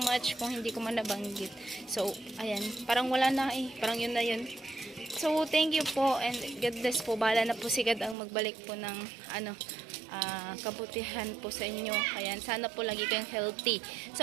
much kung hindi ko man nabanggit. So, ayan. Parang wala na Parang yun na yun. So, thank you po and God bless po. Bahala na po si God ang magbalik po ng kabutihan po sa inyo. Ayan. Sana po lagi kayong healthy.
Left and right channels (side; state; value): left; drops out; at 8.2 s